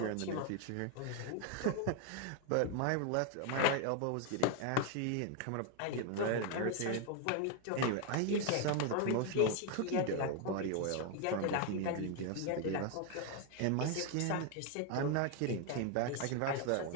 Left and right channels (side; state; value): both; different; correlation 0.01